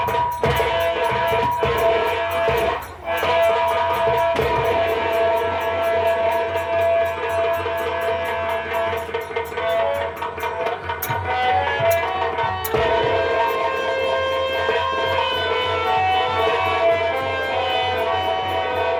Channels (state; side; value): identical; both; correlation 1.00